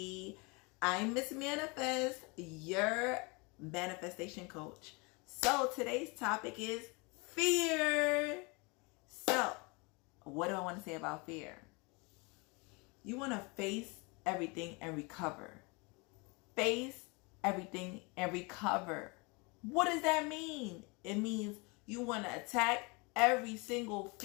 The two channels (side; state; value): right; quieter; 28.9 dB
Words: I'm Miss Manifest, your manifestation coach. So today's topic is fear. So, what do I want to say about fear? You want to face everything and recover. Face everything and recover. What does that mean? It means you want to attack every single